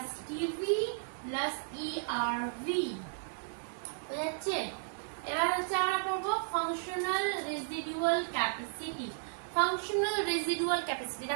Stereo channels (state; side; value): silent; left; digital silence